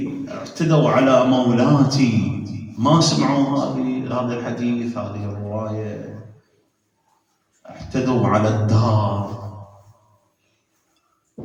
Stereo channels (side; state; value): both; identical; correlation 1.00